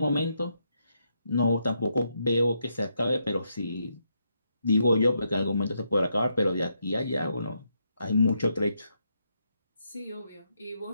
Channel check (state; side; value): inverted; both; correlation -0.79